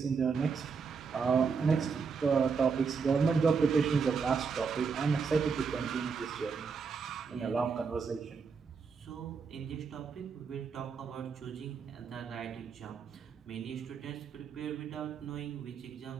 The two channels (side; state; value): left; quieter; 5.5 dB